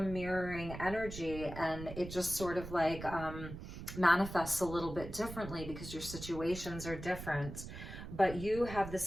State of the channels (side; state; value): right; noise; rumble, 10 dB below the sound